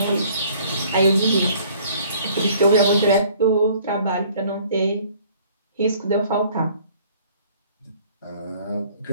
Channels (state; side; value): inverted; both; correlation -0.56